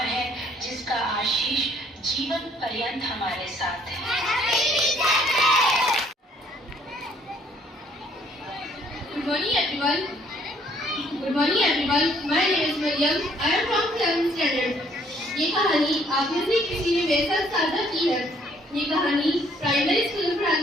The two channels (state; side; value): normal; both; correlation 0.63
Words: है जिसका आशीष जीवन पर्यंत हमारे साथ है। Good morning everyone. Good morning everyone. My name is Mariam. I am from 7th standard. ये कहानी आप में से किसी ने मेरे साथ साझा की है। ये कहानी प्राइमरी स्कूल में पढ़ाने